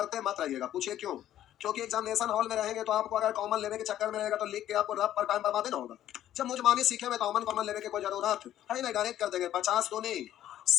मत रहिएगा, पूछिए क्यों। क्योंकि एग्जामिनेशन हॉल में रहेंगे तो आपको अगर कॉमन लेने के चक्कर में रहेगा तो लिख के आपको रफ पर टाइम बर्बाद ना होगा। जब मुझमानी सीखे में कॉमन कॉमन लेने की कोई जरूरत है नहीं, डायरेक्ट कर देंगे। 50 दूनी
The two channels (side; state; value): right; quieter; 12.0 dB